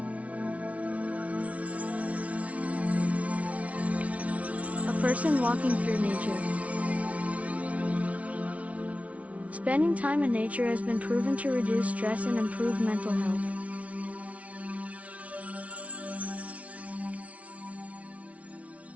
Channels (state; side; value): late; left; 0.066 ms